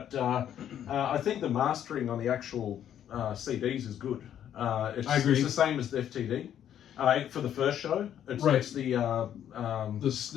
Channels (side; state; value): right; quieter; 10.2 dB